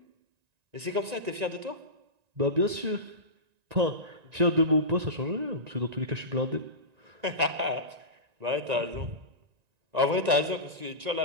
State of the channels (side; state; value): left; late; 1.9 ms